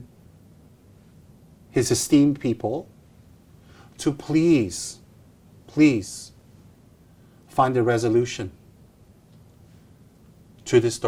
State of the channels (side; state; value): both; identical; correlation 1.00